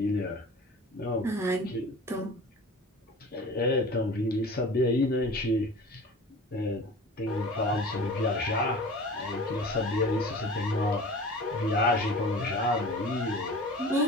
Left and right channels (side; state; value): both; normal; correlation 0.39